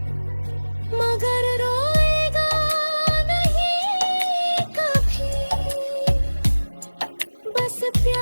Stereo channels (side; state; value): both; inverted; correlation -1.00